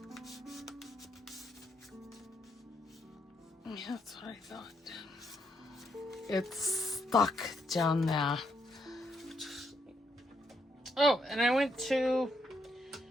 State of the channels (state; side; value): normal; both; correlation 0.77